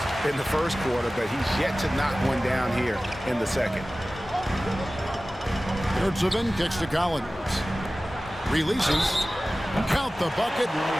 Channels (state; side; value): normal; both; correlation 0.97